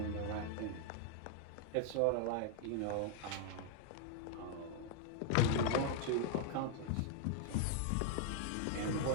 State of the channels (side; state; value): both; different; correlation 0.00